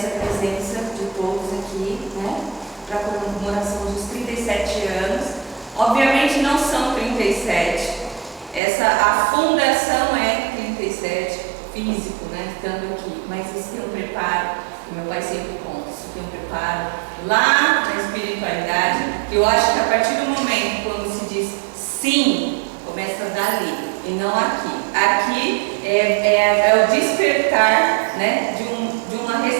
a presença de todos aqui, para a comemoração dos 37 anos. Obviamente não são 37, a fundação é 37, físico, estando aqui, mas isso tem um preparo, que meu pai sempre conta, isso tem um preparo lá na espiritualidade, que eu acho que a partir do momento quando se diz sim, começa dali, e não aqui. Aqui é o despertar, de uma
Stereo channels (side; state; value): left; drops out; at 8.6 s